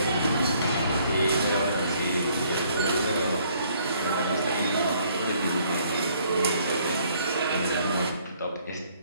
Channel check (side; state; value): both; inverted; correlation -0.64